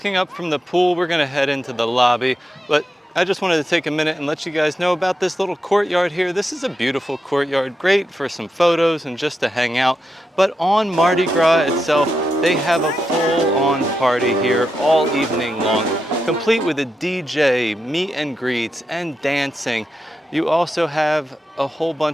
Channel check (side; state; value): both; normal; correlation 0.86